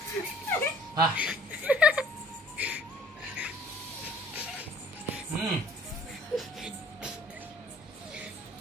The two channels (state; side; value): normal; both; correlation 0.54